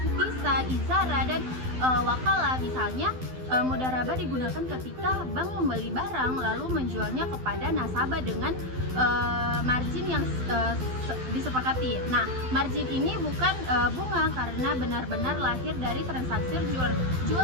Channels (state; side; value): late; left; 12 ms